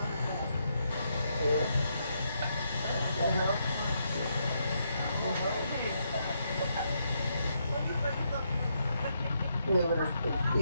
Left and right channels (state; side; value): inverted; both; correlation -0.78